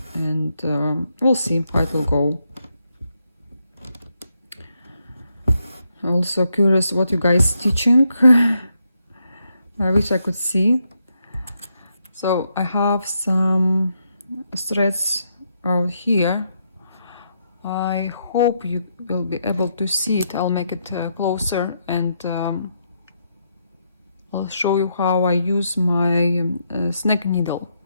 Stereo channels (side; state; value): both; inverted; correlation -0.79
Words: and we'll see how it will go. Also curious what you guys stitching. I wish I could see. So I have some threads out here. I hope you will be able to see it. I'll make it closer, and I'll show you how I use my snake needle.